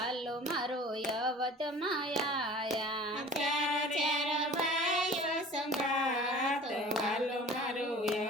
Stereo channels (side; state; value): both; normal; correlation 0.44